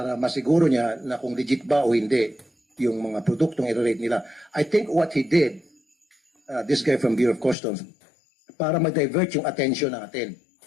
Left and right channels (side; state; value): right; drops out; at 7.6 s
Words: masiguro niya na kung legit ba o hindi yung mga produktong i-rate nila. I think what he did, this guy from Bureau of Customs, para ma-divert yung attention natin.